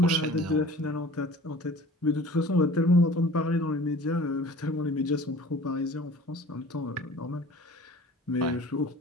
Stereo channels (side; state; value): both; normal; correlation 0.45